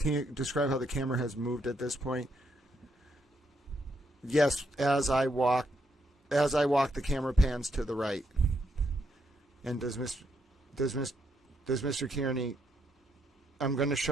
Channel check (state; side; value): normal; both; correlation 0.77